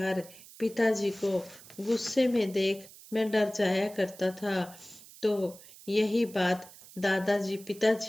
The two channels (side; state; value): right; noise; hiss, 20 dB below the sound